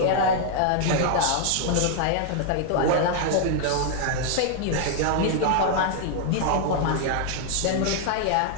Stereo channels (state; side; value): different; both; correlation 0.00